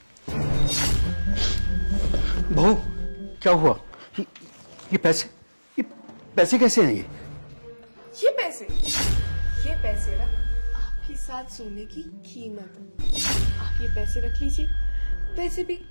बहू, क्या हुआ? ये पैसे कैसे हैं ये? ये पैसे ना आपके साथ सोने की कीमत। आप ये पैसे रख लीजिए। वैसे भी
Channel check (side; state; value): both; inverted; correlation -1.00